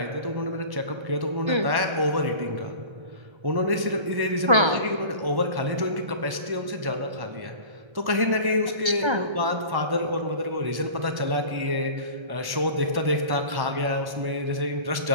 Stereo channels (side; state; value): left; late; 1.1 ms